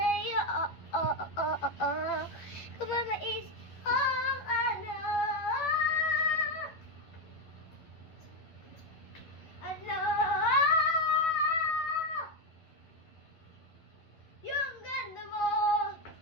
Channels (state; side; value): late; right; 11 ms